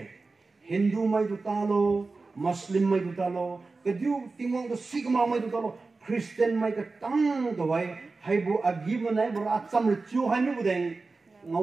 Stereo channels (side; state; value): left; quieter; 3.8 dB